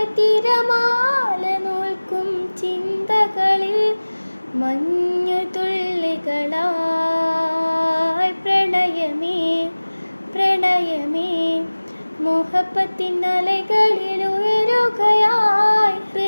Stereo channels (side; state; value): both; inverted; correlation -1.00